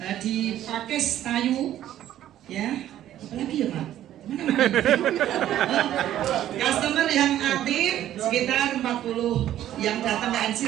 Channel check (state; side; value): quieter; left; 12.2 dB